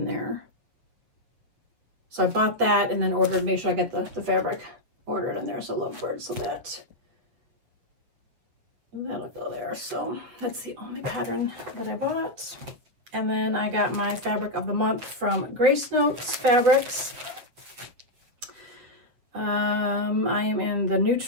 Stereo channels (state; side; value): late; left; 8.1 ms